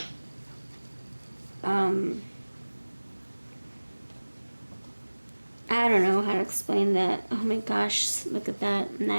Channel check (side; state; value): both; inverted; correlation -1.00